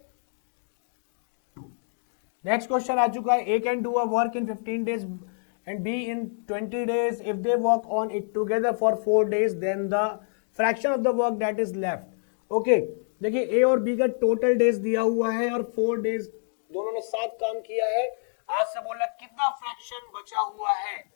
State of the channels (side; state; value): right; silent; digital silence